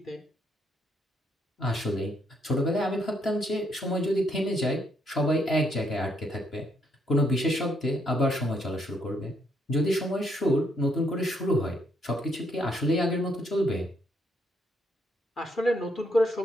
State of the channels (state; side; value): normal; both; correlation 0.73